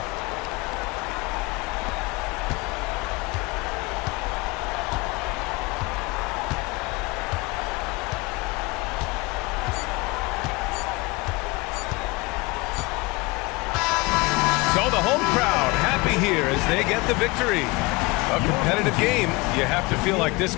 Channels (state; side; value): quieter; right; 24.3 dB